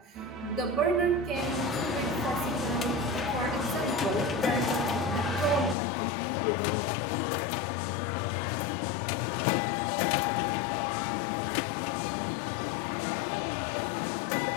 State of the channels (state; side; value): drops out; right; at 5.8 s